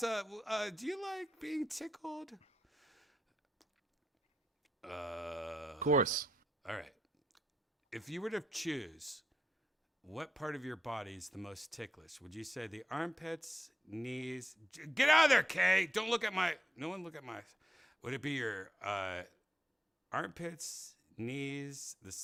do you like being tickled? Of course. All right. If you were to choose, what part of your body is the most ticklish? Would you say the armpits, knees? Get out of there, Kay! Don't look at my. No one look at my. Would it be your armpits, knees, the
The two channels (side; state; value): both; normal; correlation 0.83